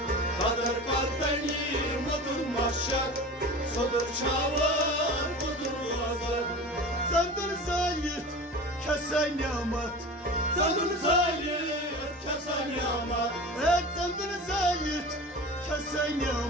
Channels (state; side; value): normal; both; correlation 0.34